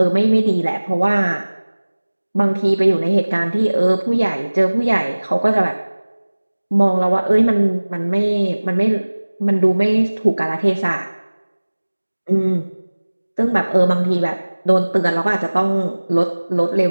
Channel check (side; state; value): both; inverted; correlation -1.00